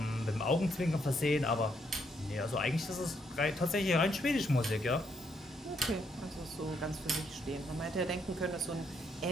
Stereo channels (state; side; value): normal; both; correlation 0.74